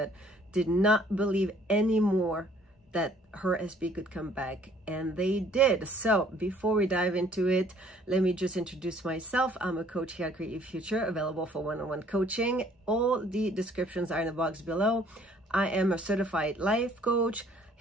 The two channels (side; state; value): both; normal; correlation 0.59